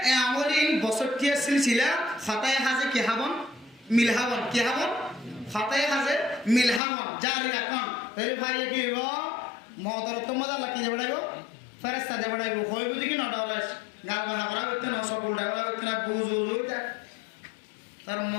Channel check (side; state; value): right; drops out; at 6.8 s